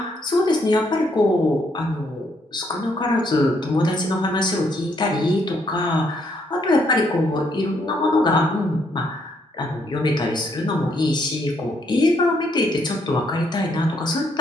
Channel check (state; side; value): normal; both; correlation 0.72